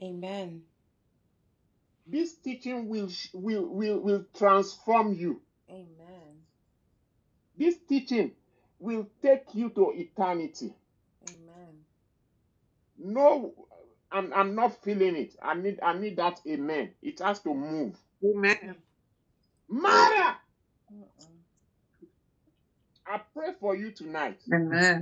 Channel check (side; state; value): both; identical; correlation 1.00